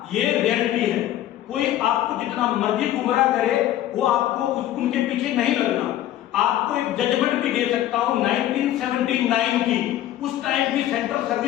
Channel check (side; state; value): right; quieter; 13.0 dB